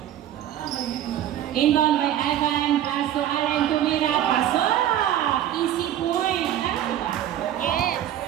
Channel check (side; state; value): left; quieter; 11.6 dB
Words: Inbound by Ivan, pass to Allen, tumira, pasok! Easy point. Ano ba? Yes.